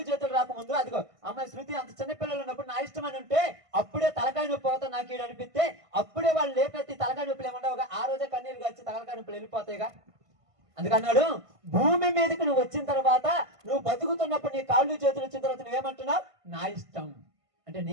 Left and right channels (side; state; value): left; late; 1.5 ms